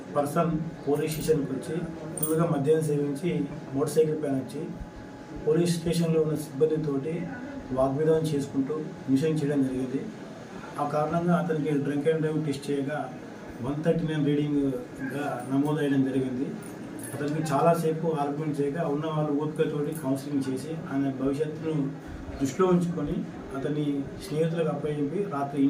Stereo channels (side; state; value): both; identical; correlation 1.00